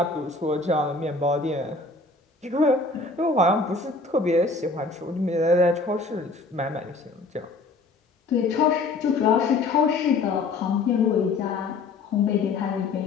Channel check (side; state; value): right; quieter; 3.7 dB